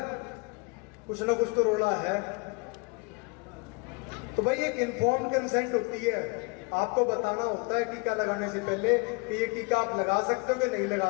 कुछ ना कुछ तो रोड़ा है। तो भाई एक इन्फॉर्म्ड कंसेंट होती है, आपको बताना होता है टीका लगाने से पहले कि ये टीका आप लगा सकते हो कि नहीं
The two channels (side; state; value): right; quieter; 29.6 dB